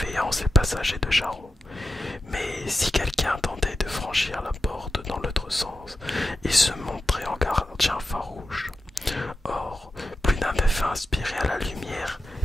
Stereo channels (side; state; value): both; normal; correlation 0.91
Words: les passagers de Charon. Mais si quelqu'un tentait de franchir la porte dans l'autre sens, il se montrait en gardien farouche. Or, plus d'un avait inspiré à la lumière